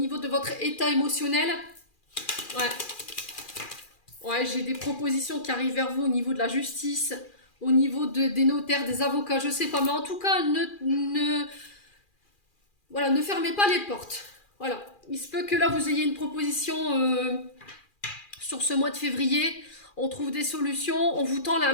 de votre état émotionnel. Ouais. Ouais, j'ai des propositions qui arrivent vers vous au niveau de la justice, au niveau des notaires, des avocats, je sais pas. Mais en tout cas, voilà, ne fermez pas les portes. Voilà. Il se peut que là, vous ayez une proposition sur ce mois de février. On trouve des solutions, on vous tend la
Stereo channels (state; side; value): late; right; 2.4 ms